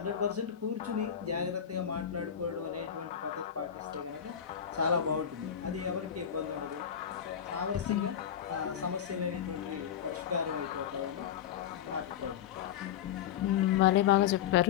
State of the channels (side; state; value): right; quieter; 9.2 dB